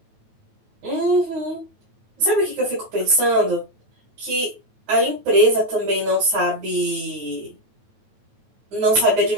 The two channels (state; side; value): late; left; 9.1 ms